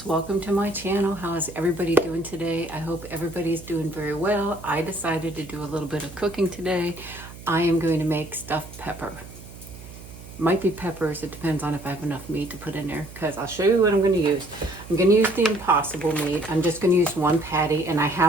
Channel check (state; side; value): noise; right; hum, 16 dB below the sound